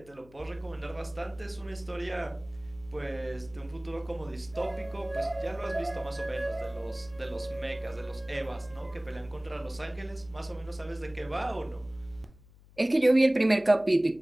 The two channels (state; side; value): noise; left; hum, 24 dB below the sound